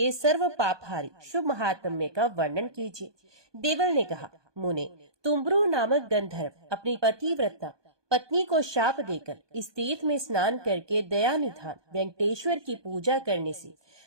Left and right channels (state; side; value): late; left; 1.2 ms